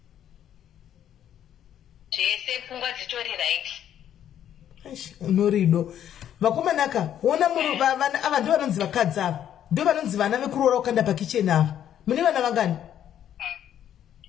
zvese pfungwa dzitori right. Unorido vakomanaka ona ava ndo vanonzi vakadzi ava ndo vanonzi vana vekuroora ukanda pakicheni ava mune vana vangani?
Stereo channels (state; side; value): quieter; right; 10.3 dB